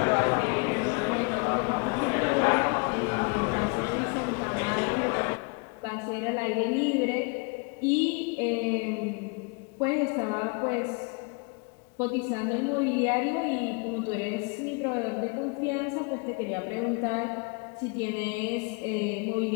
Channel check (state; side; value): quieter; right; 32.2 dB